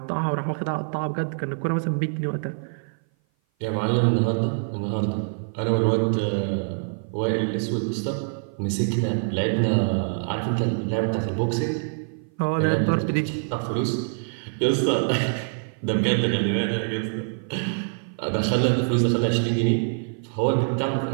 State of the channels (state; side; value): silent; left; 57 dB below the other